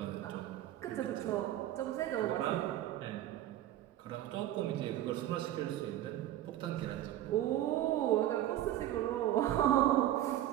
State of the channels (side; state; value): left; quieter; 13.0 dB